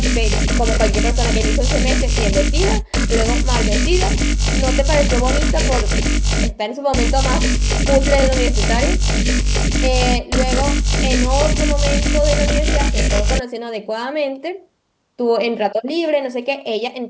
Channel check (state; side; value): identical; both; correlation 1.00